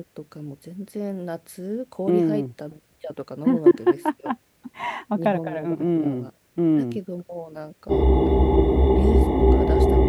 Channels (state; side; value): identical; both; correlation 1.00